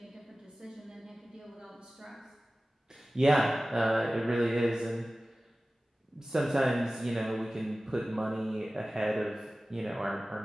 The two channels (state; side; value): normal; both; correlation 0.97